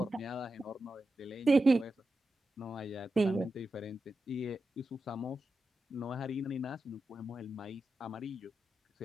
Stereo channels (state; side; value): normal; both; correlation 0.90